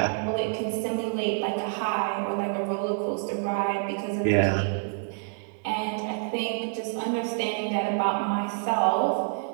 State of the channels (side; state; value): left; silent; 60 dB below the other